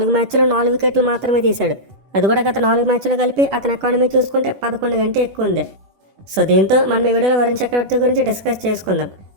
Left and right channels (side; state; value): left; late; 10 ms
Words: మ్యాచ్లో 4 వికెట్లు మాత్రమే తీశాడు. అది కూడా గత 4 మ్యాచ్లు కలిపి అతని ఎకానమీ చూసుకుంటే 11 కంటే ఎక్కువ ఉంది. సో దీంతో మనం ఈ వీడియోలో వరుణ్ చక్రవర్తి గురించి డిస్కస్ చేసుకుందాం.